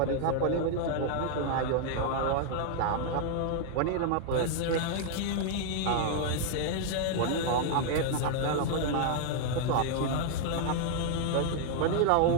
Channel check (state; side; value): different; both; correlation 0.00